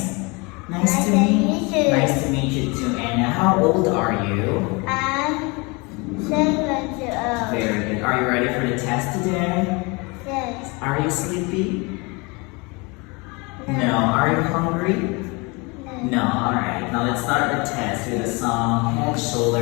Nice to meet you. Nice to meet you too, Anna. How old are you? I'm 7 years old. Very good. Are you ready for the test today? Yes. Are you sleepy? No. Are you hungry? No. Alright. Now let's start the test with a song. Head,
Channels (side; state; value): right; quieter; 28.0 dB